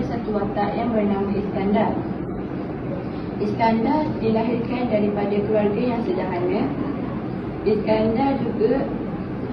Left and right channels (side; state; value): both; identical; correlation 1.00